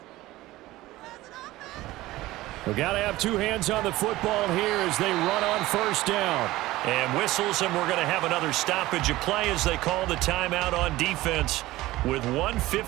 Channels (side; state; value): left; quieter; 17.6 dB